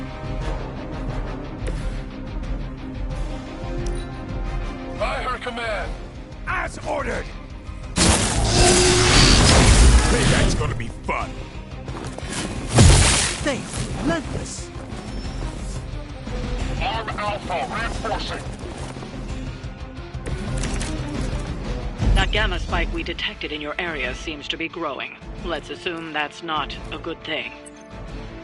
By her command! As ordered! Payback's gonna be fun. They are relentless. Arm Alpha reinforcing! That gamma spike we detected in your area seems to be growing. Let's assume that's not a good thing.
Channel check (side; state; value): both; identical; correlation 1.00